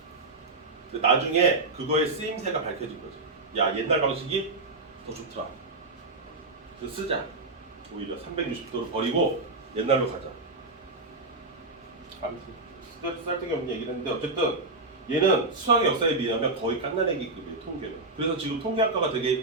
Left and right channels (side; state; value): left; quieter; 3.2 dB